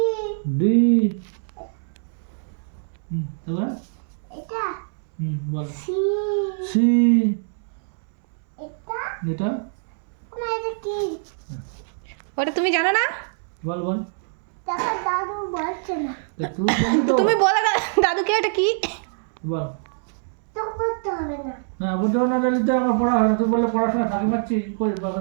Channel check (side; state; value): left; silent; 63 dB below the other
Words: ডি তারপরে এটা বল সি সি এটা এটা না এটা কি ওটা তুমি জানো না? বল বল দেখো দাদু বলছে না তা তুই বলি তো তুমি বলে দাদুকে এটা কি? বল তো করতে হবে না না বুঝতে না দিলে আমার পড়া হয় না তুই বললে পড়াশোনা ফাঁকি মারছি কই বাবা